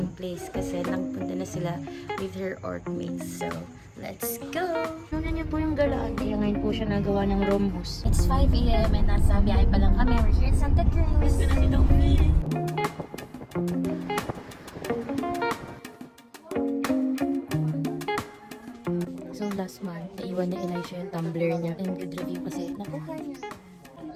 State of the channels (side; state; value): both; identical; correlation 1.00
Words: place kasi nagpunta na sila with her ortmates. So, let's go! Ano niyo po yung galaan? Kaya ngayon po siya nagawa ng rhombus. It's 5 a.m. and nasa biyahe pa lang kami. We're here in Santa Cruz. So last month, naiwan ni Elisha yung tumbler niya. And good review kasi. Nakuha niya.